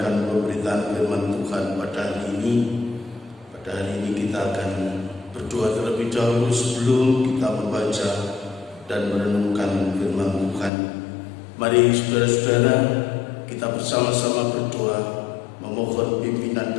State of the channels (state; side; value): drops out; right; at 10.7 s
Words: pemberitaan firman Tuhan pada hari ini. Pada hari ini kita akan berdoa terlebih dahulu sebelum kita membaca dan merenungkan firman Tuhan. Mari saudara-saudara, kita bersama-sama berdoa, memohon pimpinan